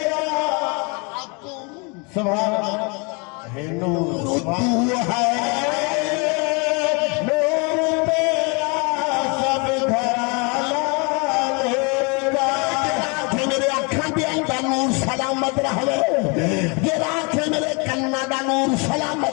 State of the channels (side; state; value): right; quieter; 32.1 dB